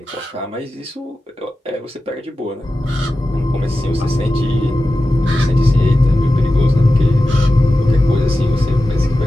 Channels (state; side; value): normal; both; correlation 0.93